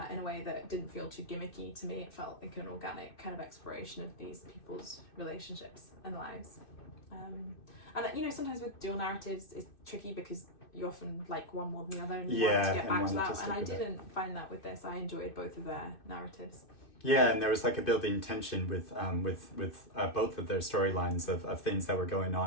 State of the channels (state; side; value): late; right; 2.6 ms